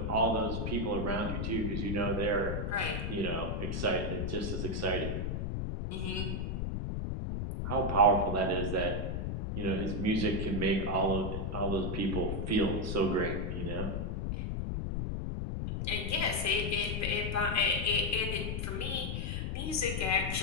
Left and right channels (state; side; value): noise; left; rumble, 2 dB below the sound